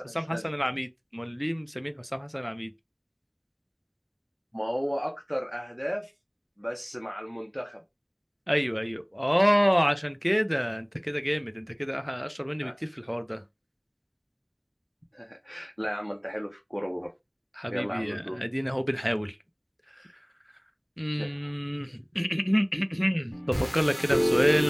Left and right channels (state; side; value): identical; both; correlation 1.00